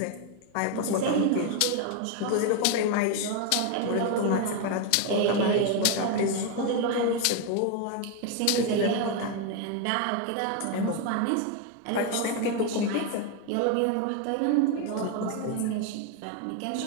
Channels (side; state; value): both; different; correlation 0.01